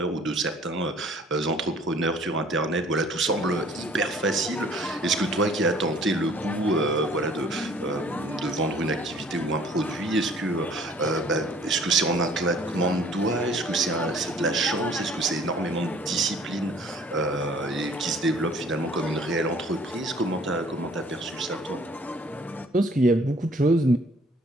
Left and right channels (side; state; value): both; normal; correlation 0.55